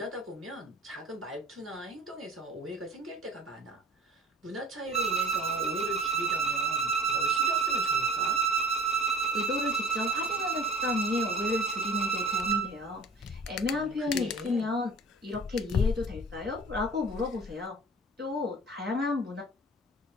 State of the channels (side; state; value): both; normal; correlation 0.45